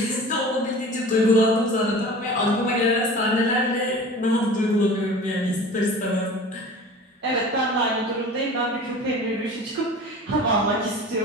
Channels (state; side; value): normal; both; correlation 0.39